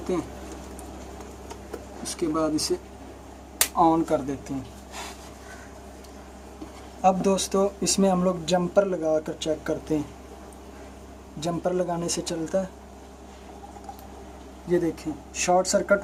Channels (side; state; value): both; identical; correlation 1.00